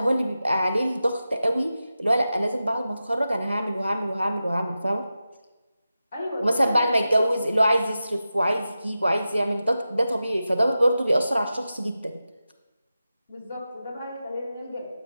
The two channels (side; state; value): both; inverted; correlation -0.92